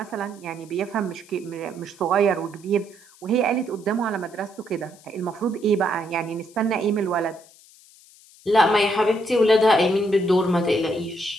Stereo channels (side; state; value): left; noise; hiss, 25 dB below the sound